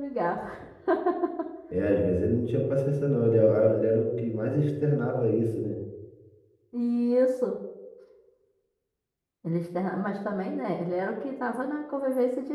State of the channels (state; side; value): identical; both; correlation 1.00